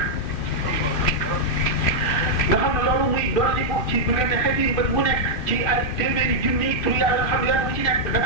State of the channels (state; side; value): late; right; 2.5 ms